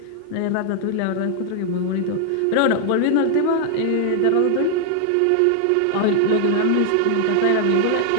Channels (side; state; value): both; different; correlation 0.00